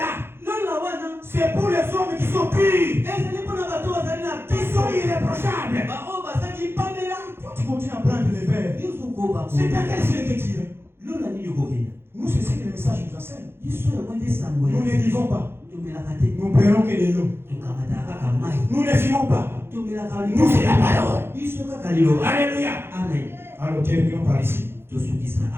C'est pour les hommes qui sont purs, qui sont irréprochables. Tu continues à prendre les verres. C'est à quel ciel que tu irais? Nous, c'est ce que le message nous enseigne. Nous ne vivons pas. Nous prenons que de l'eau. Nous ne vivons pas. Nous, c'est la parole. Alléluia. Amen. Alors, terminons par ici.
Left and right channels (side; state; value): left; late; 0.11 ms